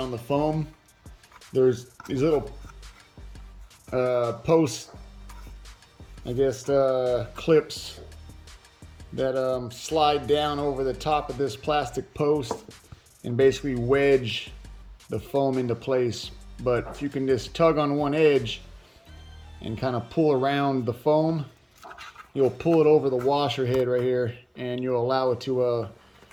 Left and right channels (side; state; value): both; identical; correlation 1.00